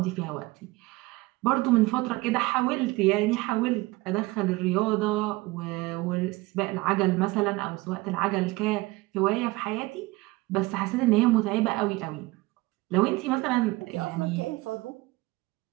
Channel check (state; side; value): quieter; left; 21.2 dB